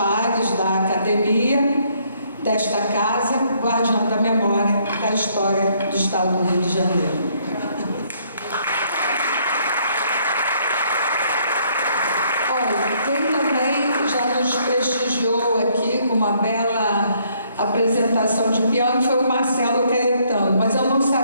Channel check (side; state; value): both; inverted; correlation -0.67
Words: da academia, desta casa, guardiã da memória da história do Estado do Rio de Janeiro. Olha, quem também já nos prestigiou aqui com uma bela apresentação de piano foi o Marcelo Caetano, mas eu não